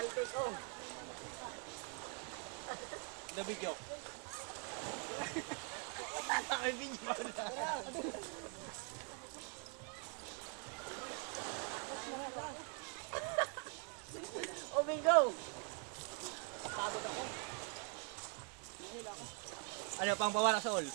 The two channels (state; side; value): quieter; left; 39.2 dB